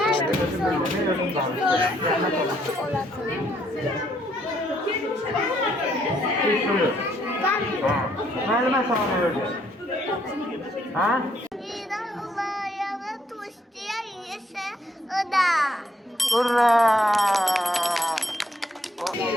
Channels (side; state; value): both; normal; correlation 0.70